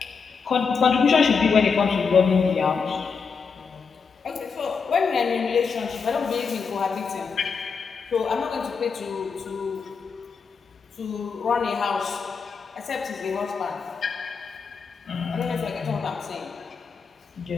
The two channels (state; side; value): quieter; right; 5.5 dB